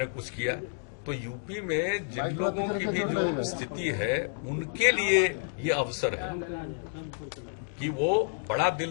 कुछ किया। तो यूपी में जिन लोगों की भी जो स्थिति है, उनके लिए ये अवसर है कि वो बड़ा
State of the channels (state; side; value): silent; right; digital silence